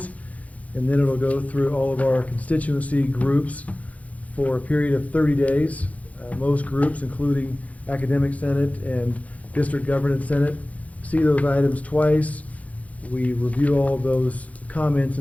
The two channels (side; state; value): right; late; 0.069 ms